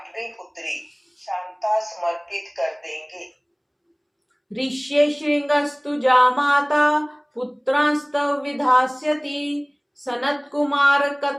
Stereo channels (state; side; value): identical; both; correlation 1.00